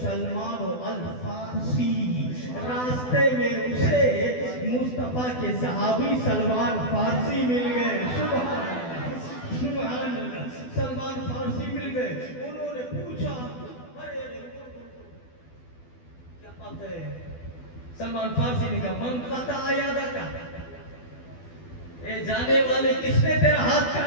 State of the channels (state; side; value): late; right; 12 ms